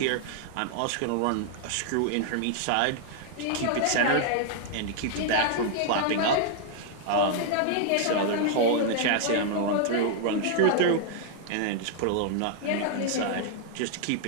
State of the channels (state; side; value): different; both; correlation -0.01